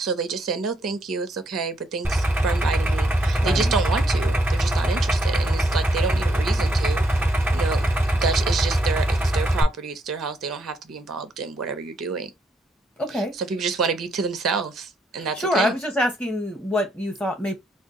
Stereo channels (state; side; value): normal; both; correlation 0.75